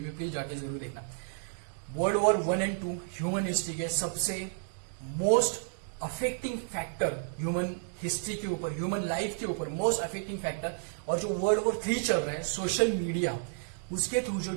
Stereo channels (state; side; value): silent; left; digital silence